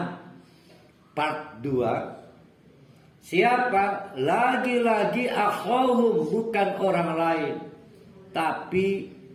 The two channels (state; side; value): identical; both; correlation 1.00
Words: part 2. Siapa? Lagi-lagi akhawhum, bukan orang lain, tapi